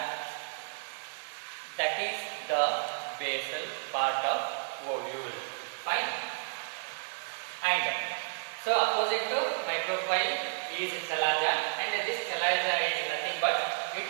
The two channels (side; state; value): left; silent; digital silence